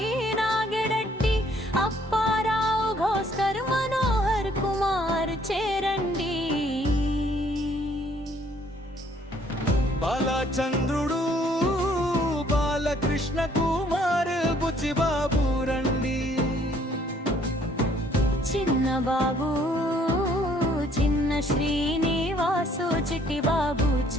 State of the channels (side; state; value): both; normal; correlation 0.63